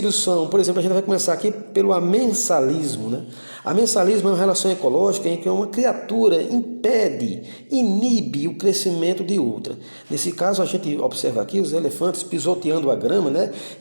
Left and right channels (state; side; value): inverted; both; correlation -1.00